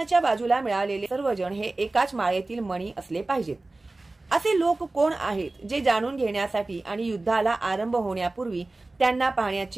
बाजूला मिळालेले सर्वजण हे एकाच माळेतील मणी असले पाहिजेत. असे लोक कोण आहेत जे जाणून घेण्यासाठी आणि युद्धाला आरंभ होण्यापूर्वी त्यांना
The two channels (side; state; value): left; quieter; 3.1 dB